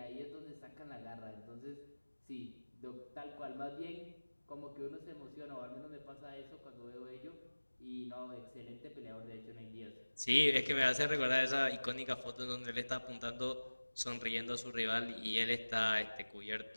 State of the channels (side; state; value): both; inverted; correlation -1.00